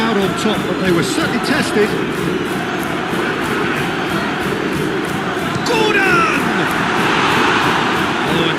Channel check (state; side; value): identical; both; correlation 1.00